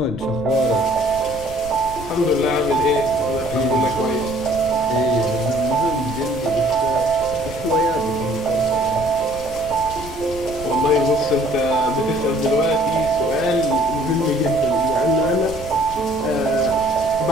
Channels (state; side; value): noise; left; rumble, 14 dB below the sound